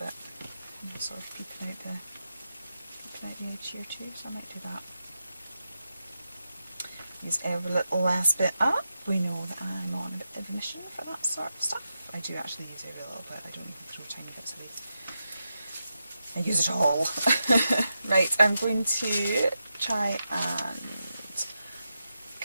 sort of peeking out the edge here too, so I might do that. Use every little last bit up. We know that I'm on a bit of a mission for that sort of stuff. I do actually use every little bit, I don't even throw tiny bits away. I use it all. Right, I'm going to try and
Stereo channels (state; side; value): inverted; both; correlation -0.88